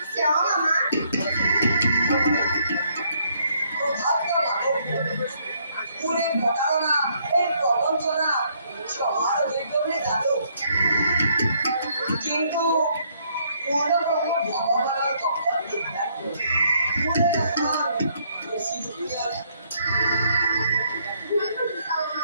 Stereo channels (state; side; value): inverted; both; correlation -0.69